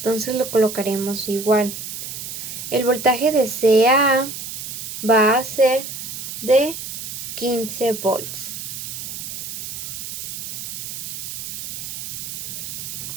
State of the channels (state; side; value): noise; right; hiss, 7 dB below the sound